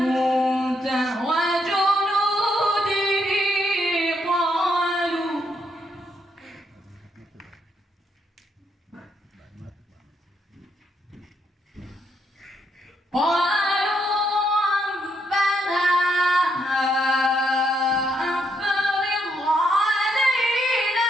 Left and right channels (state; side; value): normal; both; correlation 0.76